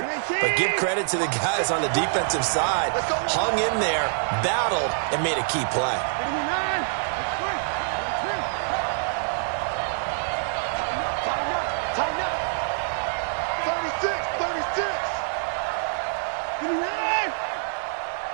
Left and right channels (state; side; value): silent; left; 59 dB below the other